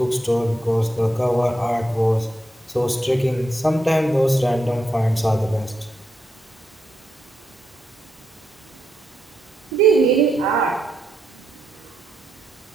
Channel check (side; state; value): both; normal; correlation 0.82